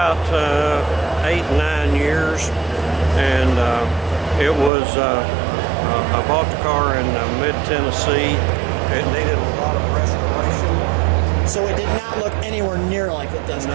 8, 9 years, and it was, I bought the car in mid-Tennessee. It needed a lot of restoration. So it did not look anywhere near like it does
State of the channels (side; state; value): left; drops out; at 4.7 s